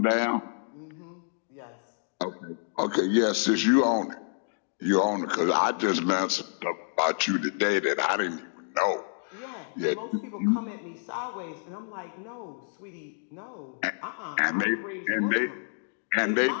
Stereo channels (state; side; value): silent; right; digital silence